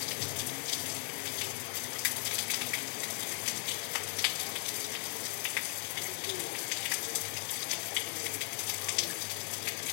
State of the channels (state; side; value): silent; right; 53 dB below the other